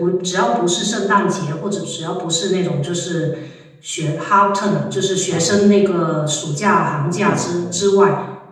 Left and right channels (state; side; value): identical; both; correlation 1.00